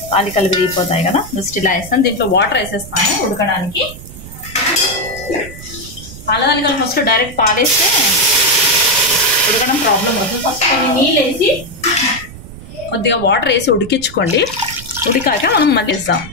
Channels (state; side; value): noise; right; rumble, 15 dB below the sound